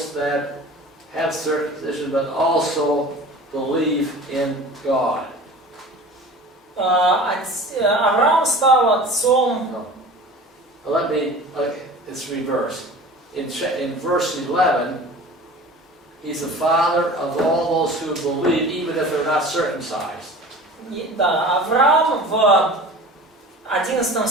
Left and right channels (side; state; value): both; normal; correlation 0.40